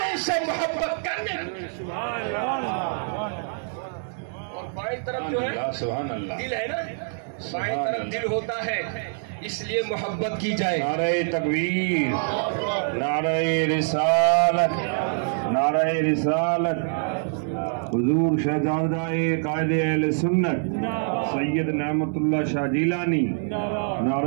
اس سے محبت کرنے کی۔ اور بائیں طرف جو ہے دل ہے نا، بائیں طرف دل ہوتا ہے، اس لیے محبت کی جائے۔ نعرہ تکبیر، نعرہ رسالت، نعرہ رسالت۔ حضور شہزادہ قائد اہل سنت سید نعمت اللہ شاہ جیلانی،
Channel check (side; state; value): left; silent; digital silence